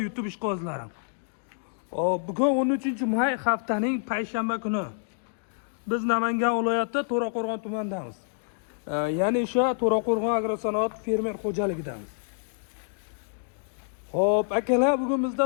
YouTube ishqozlari. Bugun 13-may haftaning payshanba kuni. Biz Namangan viloyati To'raqo'rg'on tumanidamiz. Ya'ni o'sha To'raqo'rg'on agrosanoat fermer xo'jaligidamiz. Xo'p, akalar, bugun bizda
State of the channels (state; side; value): silent; right; digital silence